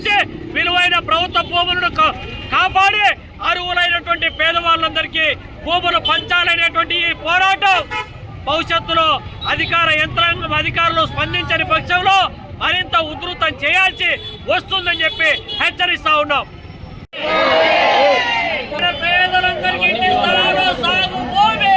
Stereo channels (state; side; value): identical; both; correlation 1.00